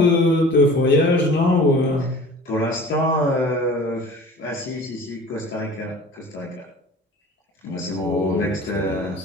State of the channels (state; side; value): normal; both; correlation 0.42